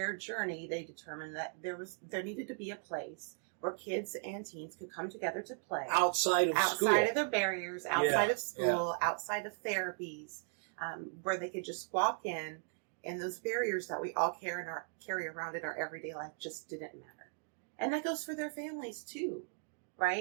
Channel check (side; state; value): left; silent; 53 dB below the other